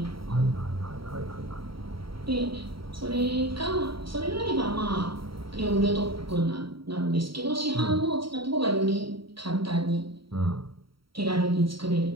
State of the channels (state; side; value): late; left; 0.75 ms